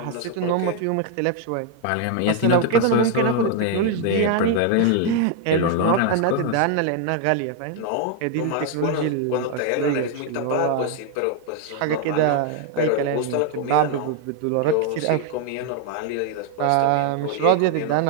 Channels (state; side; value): different; both; correlation 0.00